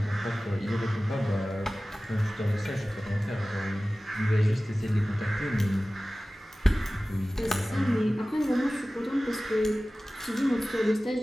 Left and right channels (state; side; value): normal; both; correlation 0.97